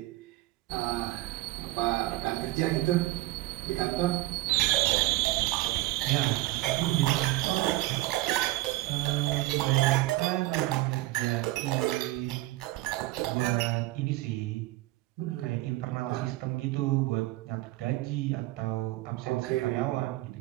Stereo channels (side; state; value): left; quieter; 18.5 dB